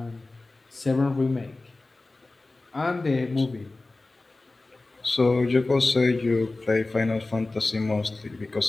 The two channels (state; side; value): quieter; right; 3.2 dB